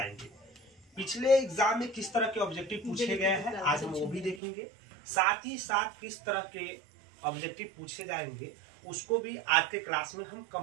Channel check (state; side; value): drops out; left; at 4.4 s